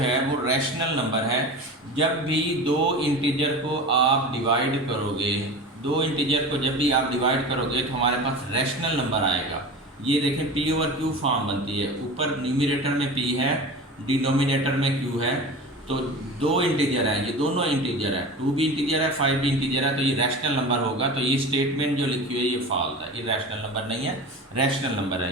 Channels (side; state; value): both; normal; correlation 0.32